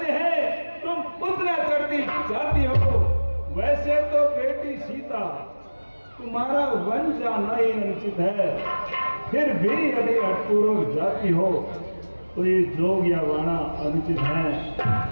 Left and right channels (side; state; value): both; inverted; correlation -1.00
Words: हैं तुम उतना चढ़ती जाती हो। वैसे तो बेटी सीता तुम्हारा वन जाना ही अनुचित है, फिर भी यदि हठपूर्वक जाती हो तो ये जोग या वाणा अनुचित